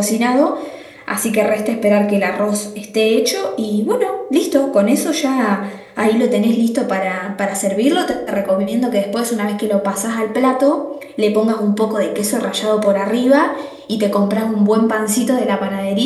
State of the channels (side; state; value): both; identical; correlation 1.00